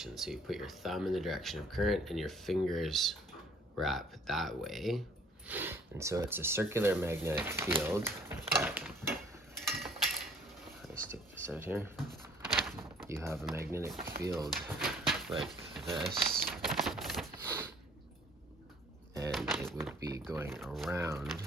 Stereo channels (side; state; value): both; normal; correlation 0.57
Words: So you put your thumb in the direction of current and your fingers wrap that way. And so it's a circular magnetic field that, let me stick this out here. You have a magnetic field like this, and it would be going around